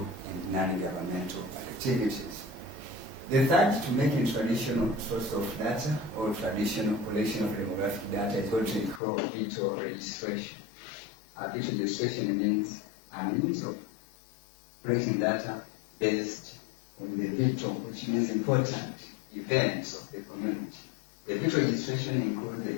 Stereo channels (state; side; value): drops out; right; at 9.0 s